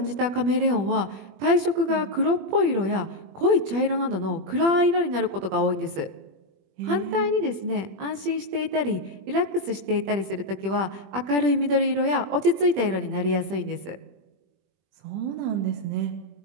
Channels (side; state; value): left; late; 21 ms